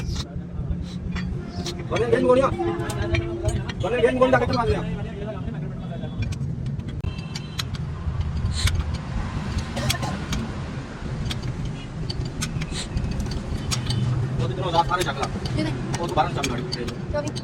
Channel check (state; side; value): identical; both; correlation 1.00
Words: बने गेम गोलियां डाके मार दिया। वो रात सारे चकला वो दोबारा चम गाड़ी